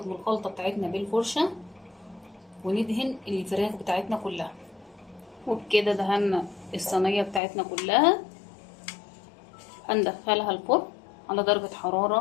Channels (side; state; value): right; drops out; at 7.4 s